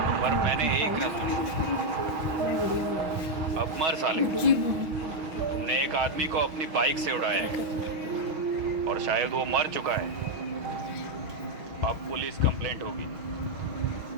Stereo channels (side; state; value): left; late; 6.3 ms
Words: पर मैंने एक न सुनी। अब मर साले, तुमने एक आदमी को अपनी बाइक से उड़ाया है और शायद वो मर चुका है। अब पुलिस कंप्लेंट होगी।